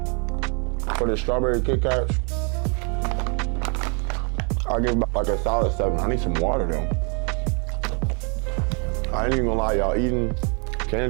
for the strawberry Kit Kats, I'll give about like a solid 7. I need some water though. I ain't even gonna lie, y'all, eating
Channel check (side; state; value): left; quieter; 36.7 dB